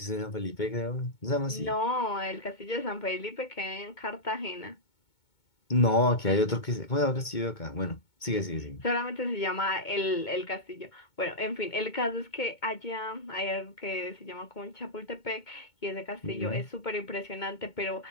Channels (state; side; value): late; right; 2.2 ms